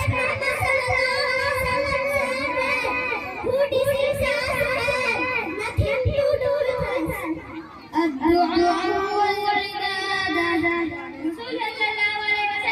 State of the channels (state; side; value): identical; both; correlation 1.00